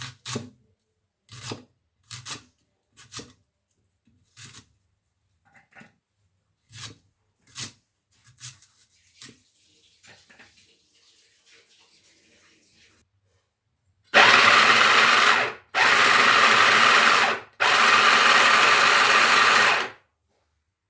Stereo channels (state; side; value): identical; both; correlation 1.00